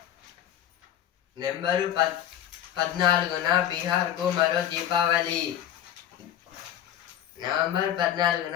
నెంబరు 14న బీహార్కు మరో దీపావళి. నవంబర్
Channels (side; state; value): right; quieter; 11.1 dB